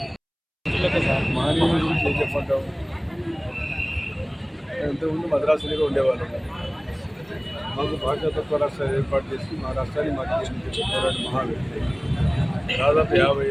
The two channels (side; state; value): both; identical; correlation 1.00